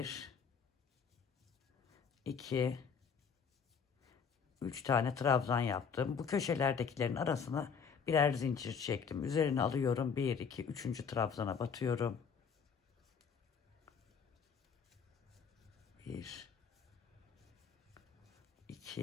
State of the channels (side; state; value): right; quieter; 6.4 dB